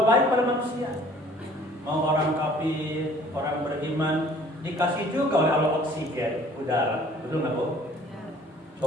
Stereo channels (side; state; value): both; normal; correlation 0.54